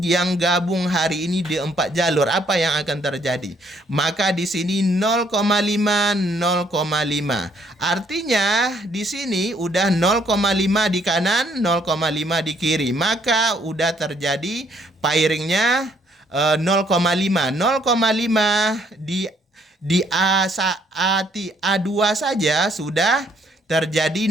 yang gabung hari ini di 4 jalur. Apa yang akan terjadi? Maka di sini 0,5, 0,5. Artinya di sini udah 0,5 di kanan, 0,5 di kiri. Maka udah terjadi pairingnya 0,5. 0,5 di A2 saja sudah terjadi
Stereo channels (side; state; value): both; normal; correlation 0.67